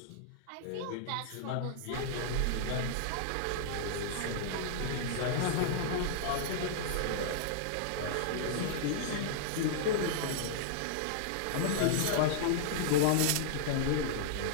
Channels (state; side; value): different; both; correlation -0.02